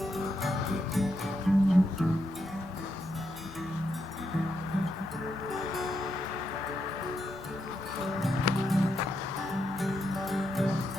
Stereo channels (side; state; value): right; noise; rumble, 24 dB below the sound